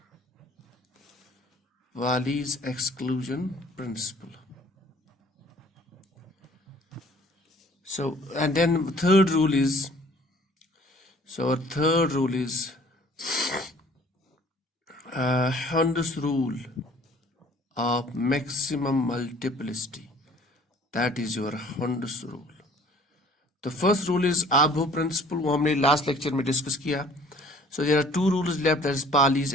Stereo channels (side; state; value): both; normal; correlation 0.54